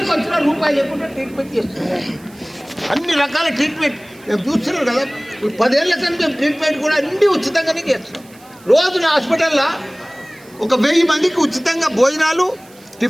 వచ్చినా రూపాయలు లేకుండా ట్రీట్మెంట్ చేస్తున్నారు. అన్ని రకాల ట్రీట్మెంట్ మేము చూస్తున్నాం కదా. 10 ఏళ్ళ కానీ మేము ట్రీట్మెంట్ కూడా అన్నీ ఉచితంగానే చేస్తున్నాం. రోజున హాస్పిటల్లో ఒక 1000 మందికి ఉచితంగా భోజనాలు,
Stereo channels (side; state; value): right; noise; hiss, 26 dB below the sound